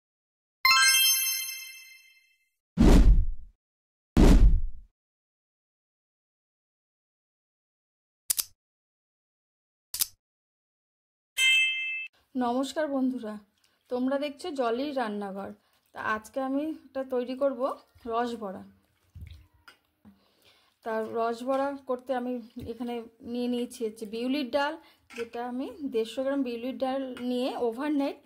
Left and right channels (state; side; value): identical; both; correlation 1.00